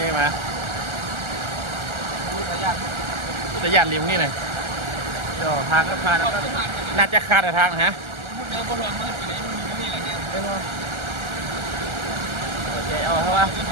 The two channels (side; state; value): left; late; 1.4 ms